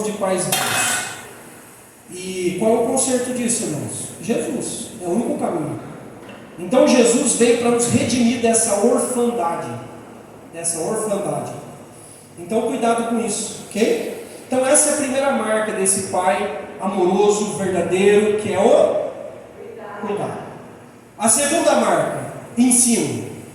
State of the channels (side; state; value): both; identical; correlation 1.00